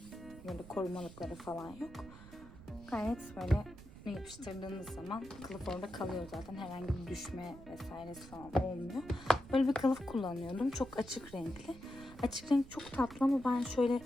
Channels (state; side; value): noise; right; rumble, 17 dB below the sound